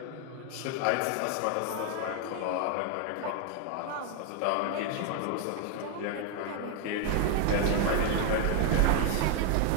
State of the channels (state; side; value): different; both; correlation 0.01